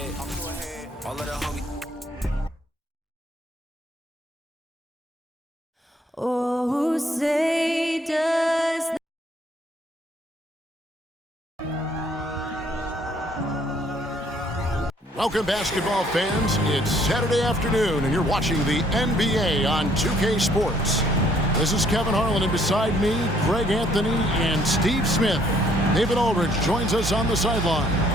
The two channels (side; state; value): both; normal; correlation 0.64